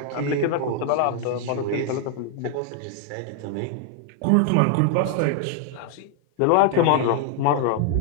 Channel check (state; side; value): different; both; correlation 0.00